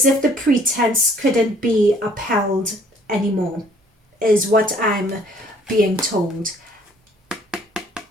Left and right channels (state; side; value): normal; both; correlation 0.59